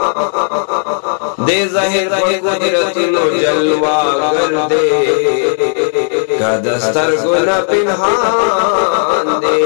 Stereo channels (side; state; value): right; silent; 72 dB below the other